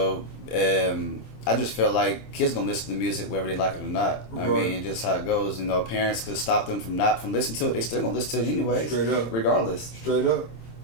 just feel like kids gonna listen to music whether they like it or not. Right. Just how it goes. You know, parents could stop them from listening to it. They still gonna listen to it anyways. Straight up. Regardless. Straight up.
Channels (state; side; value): late; right; 27 ms